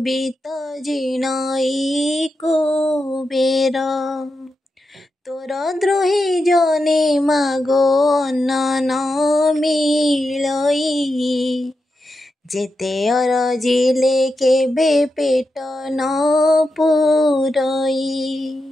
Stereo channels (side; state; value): both; normal; correlation 0.88